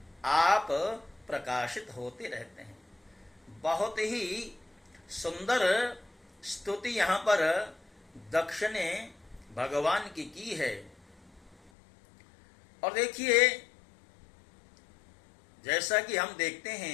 आप प्रकाशित होते रहते हैं। बहुत ही सुंदर स्तुति यहाँ पर दक्ष ने भगवान की है। और देखिए, जैसा कि हम देखते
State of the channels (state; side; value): drops out; right; at 11.7 s